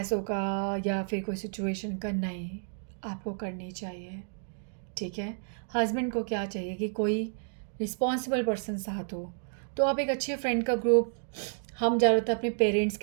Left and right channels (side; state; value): left; silent; digital silence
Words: का या फिर कोई सिचुएशन का, नहीं, आपको करनी चाहिए, ठीक है। हस्बैंड को क्या चाहिए कि कोई रिस्पॉन्सिबल पर्सन साथ हो, तो आप एक अच्छे फ्रेंड का ग्रुप, हम ज़्यादातर अपने पेरेंट्स